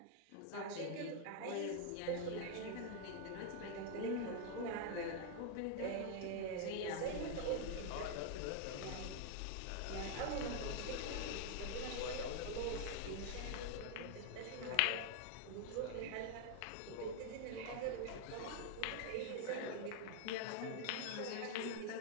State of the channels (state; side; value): different; both; correlation 0.00